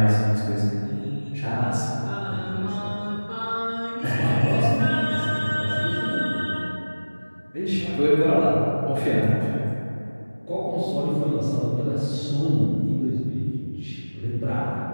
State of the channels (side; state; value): both; inverted; correlation -1.00